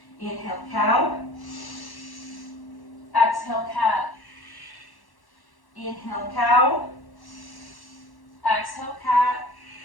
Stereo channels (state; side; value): late; right; 1.1 ms